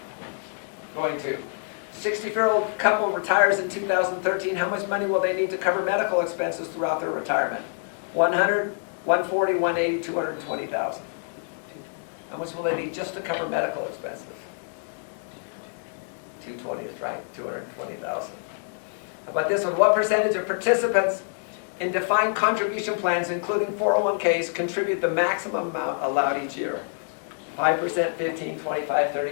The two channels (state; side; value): silent; right; digital silence